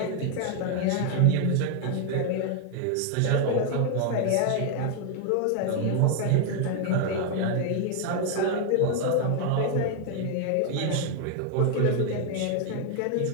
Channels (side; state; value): both; different; correlation 0.00